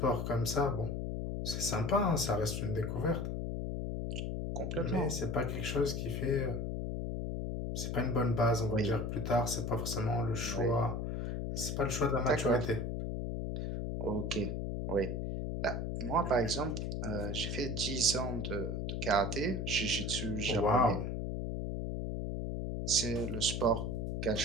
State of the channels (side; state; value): left; noise; hum, 2 dB below the sound